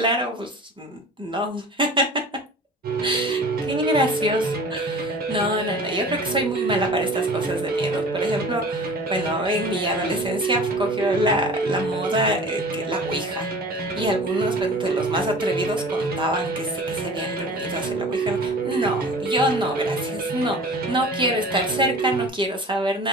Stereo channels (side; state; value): both; normal; correlation 0.42